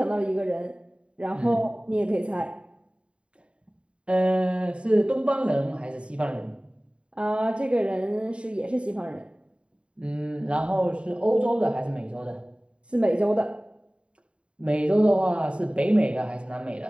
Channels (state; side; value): late; left; 0.057 ms